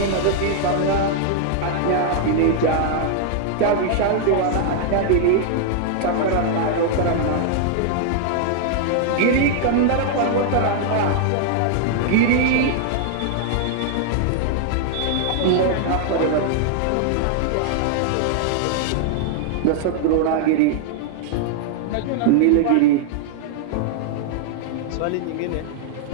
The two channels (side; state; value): both; different; correlation -0.01